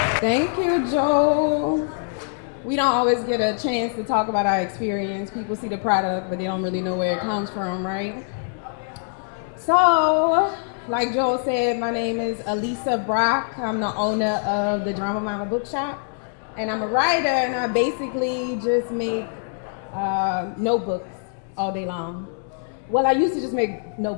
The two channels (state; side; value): silent; right; digital silence